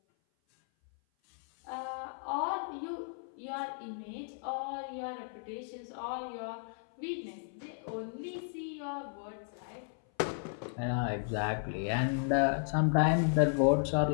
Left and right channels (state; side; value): silent; right; 55 dB below the other